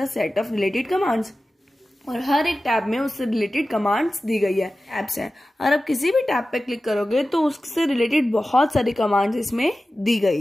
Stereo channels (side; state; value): both; normal; correlation 0.95